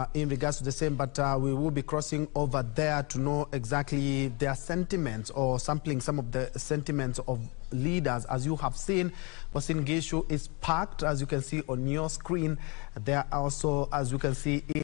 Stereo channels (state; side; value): quieter; right; 30.5 dB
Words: in regards to the same, but we will be crossing over there to know exactly their sentiments or sampling some of the sentiments of leaders. As you have seen, Uasin Gishu is packed, as you can see on your screen. There are also, as you can see,